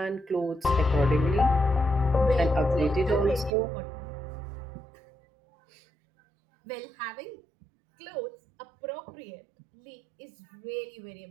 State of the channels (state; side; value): drops out; left; at 3.5 s